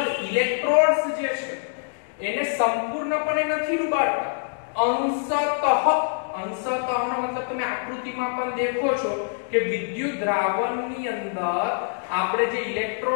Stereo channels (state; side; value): silent; right; digital silence